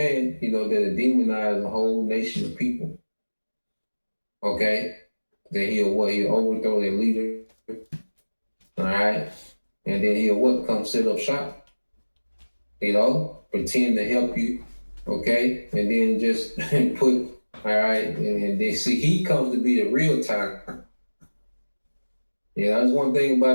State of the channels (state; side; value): inverted; both; correlation -1.00